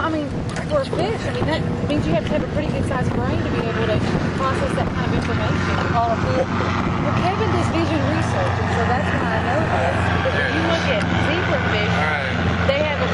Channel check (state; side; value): identical; both; correlation 1.00